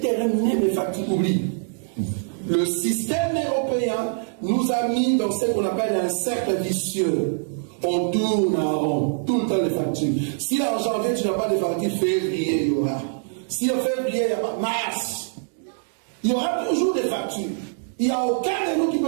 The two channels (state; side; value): silent; left; digital silence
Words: mes factures, oublie. Le système européen nous a mis dans ce qu'on appelle un cercle vicieux. On tourne en rond, tout le temps les factures. Si en janvier tu n'as pas de factures, février il y aura. Si en février il n'y a pas, mars, il y aura toujours des factures. Il n'y a aucun de nous qui